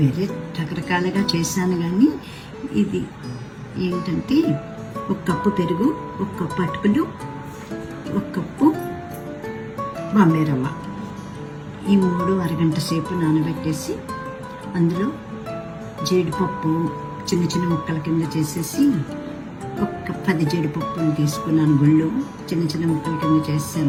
రకరకాలుగా చేశాను, కానీ ఇది ఏంటంటే 1 కప్పు పెరుగు, 1 కప్పు అటుకులు, 1 కప్పు బాంబే రవ్వ, ఈ 3 అరగంట సేపు నానబెట్టేసి అందులో జీడిపప్పు చిన్న చిన్న ముక్కల కింద చేసేసి 10 జీడిపప్పులు తీసుకున్నాను. గుళ్ళు చిన్న చిన్న ముక్కల కింద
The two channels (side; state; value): both; identical; correlation 1.00